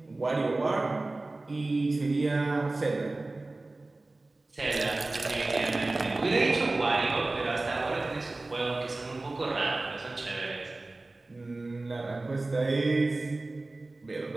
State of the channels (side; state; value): left; quieter; 3.1 dB